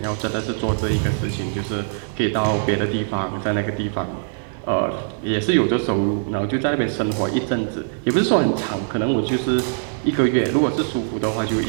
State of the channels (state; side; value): silent; left; 64 dB below the other